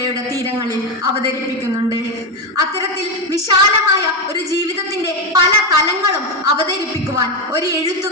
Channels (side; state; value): both; normal; correlation 0.11